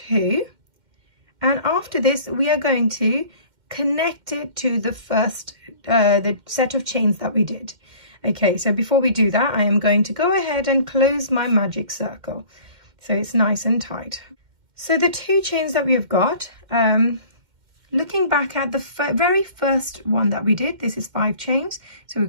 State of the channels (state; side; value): late; left; 2.1 ms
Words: and after this we are going to connect it to the first the set of chains that we did. Okay, so before we do that, I am going to go ahead and close my magic circle so it's nice and tight. So the 2 chains that we have got, looking back at the very first one that we did, this is 5 chains. So we've